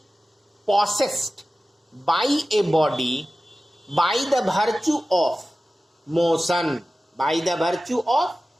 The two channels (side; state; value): both; normal; correlation 0.96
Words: possessed by a body by the virtue of motion,